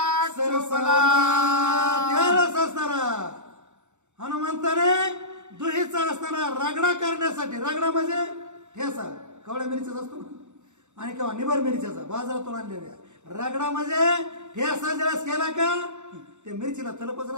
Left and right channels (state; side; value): late; left; 0.84 ms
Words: सरसला त्यालाच असणारा हनुमंताने दुहीचा असणारा रगडा करण्यासाठी. रगडा म्हणजे ठेसा कवळ्या मिरच्याचा असतो ना आणि किंवा निबर मिरच्याचा बाजारातून आणलेल्या. रगडा म्हणजे ठेसा ज्यावेळेस केला का ते मिरचीला तलपच